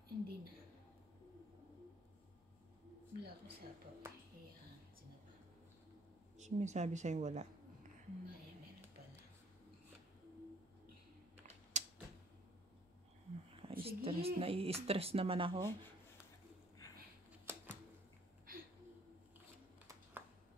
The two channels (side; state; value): both; normal; correlation 0.59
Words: Hindi na. Wala ko sa po. Ayan, sinapa. Sumisabi sa'yo wala. May, meron pala. Stress, nai-stress naman ako.